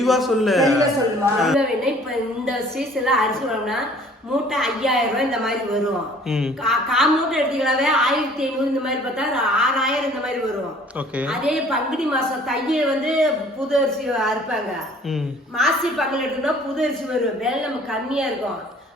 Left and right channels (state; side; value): normal; both; correlation 0.53